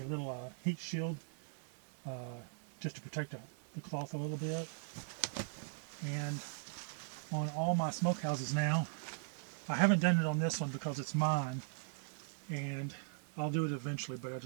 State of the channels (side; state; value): left; silent; 51 dB below the other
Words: little heat shield just to protect the cloth a little bit. And on all my smokehouses now, I haven't done it on this one because it's mine, and I'll do it eventually, but I